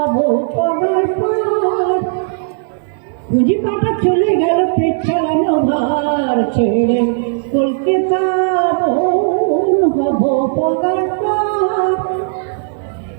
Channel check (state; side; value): silent; left; digital silence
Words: পগার পর পুঁজি পাটা চলে গেল পেট চালানো ভার ছেড়ে কলকাতা হবো পগার পর